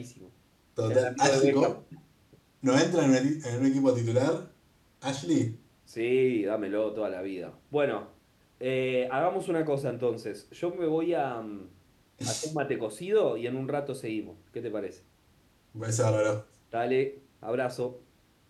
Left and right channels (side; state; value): both; identical; correlation 1.00